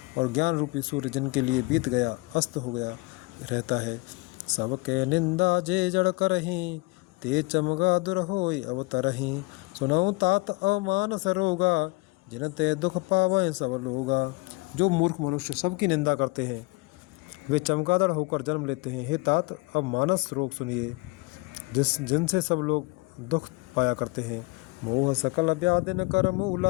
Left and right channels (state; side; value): quieter; right; 25.6 dB